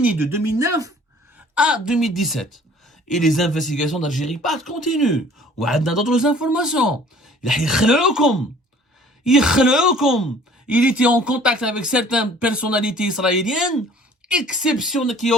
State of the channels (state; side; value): normal; both; correlation 0.52